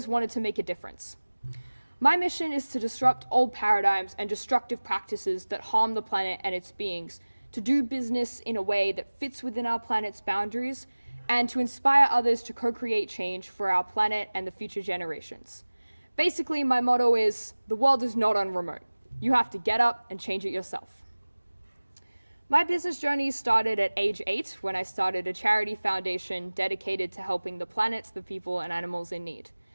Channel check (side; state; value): both; inverted; correlation -1.00